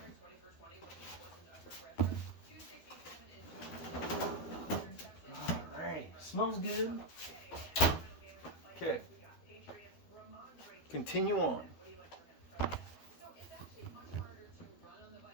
Alright, smells good. Okay. Continue on.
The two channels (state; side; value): late; right; 12 ms